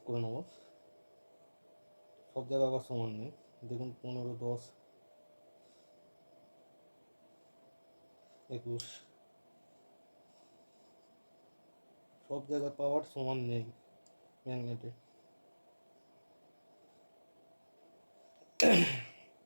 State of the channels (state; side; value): inverted; both; correlation -1.00